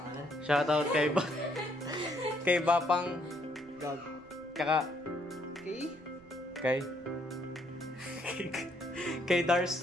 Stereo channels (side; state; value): right; noise; rumble, 27 dB below the sound